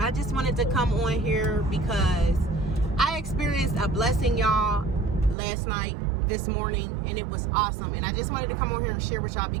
just wanted to come on here because I experienced a blessing, y'all, last night, this morning, and it was awesome. And I just wanted to come on here and share with y'all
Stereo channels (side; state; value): left; drops out; at 5.4 s